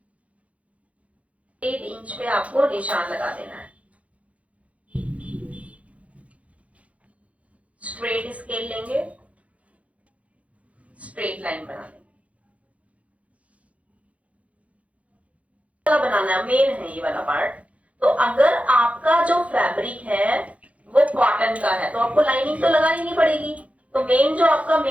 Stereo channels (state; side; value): late; left; 0.065 ms